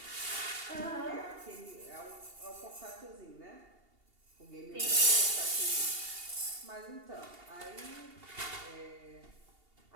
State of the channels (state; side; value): late; left; 2.8 ms